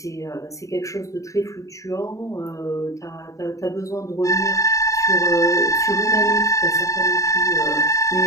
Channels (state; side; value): late; right; 0.16 ms